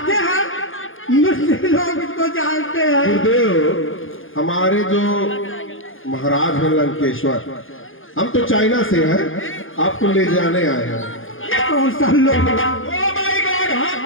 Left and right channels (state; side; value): late; right; 0.58 ms